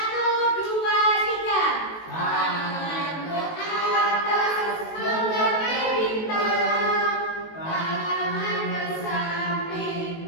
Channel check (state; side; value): late; right; 19 ms